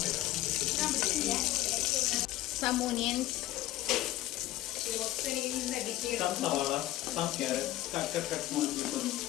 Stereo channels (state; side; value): quieter; right; 15.4 dB